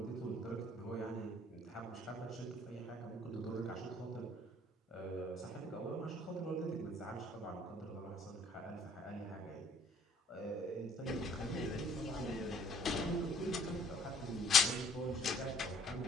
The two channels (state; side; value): normal; both; correlation 0.59